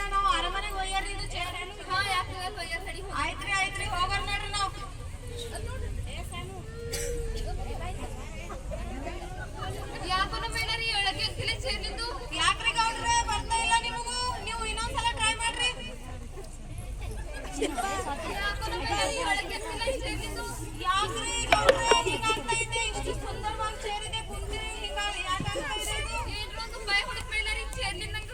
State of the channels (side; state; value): both; identical; correlation 1.00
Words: ನಾವು ಅರಮನೆಗೆ ಒಯ್ಯಾರಿ ಇದು ಚೇರ್. ಹಾ ಯಾಕೆ ಒಯ್ಯಾರ ಸರಿ. ಆಯ್ತ್ರಿ ಹೋಗೋಣ ನೋಡ್ರಿ ನಾವು. ಯಾಕೋ ನಮ್ಮ ಏನಾರಿ ಹೇಳಕ್ಕೆ ಆಗ್ತಿಲ್ಲ ಚೇರ್ ನಿಂದು. ಯಾಕ್ರಿ ಗೌಡ್ರೆ ಬರ್ತಾ ಇಲ್ಲ ನಿಮಗೂ? ನೀವು ಇನ್ನೊಂದ್ಸಲ ಟ್ರೈ ಮಾಡ್ರಿ. ಯಾಕೋ ನಮ್ಮ ಏನಾರಿ ಹೇಳಕ್ಕೆ ಆಗ್ತಿಲ್ಲ ಚೇರ್ ನಿಂದು. ಯಾಕ್ರಿ ಗೌಡ್ರೆ ಹಿಂಗಾಗ್ತಾ ಇದೆ? ಇಷ್ಟು ಸುಂದರವಾಗಿ ಚೇರ್ ಇದೆ ಕುಂತಿರಿ ಯಾಕಾಗ್ತಾ ಇದೆ ಇದು? ಏನ್ರ ಒಂದು ಭಯ ಹೊಡಿತ ಮೇಲಾರಿ ಚೇರ್ ನಿಂದ.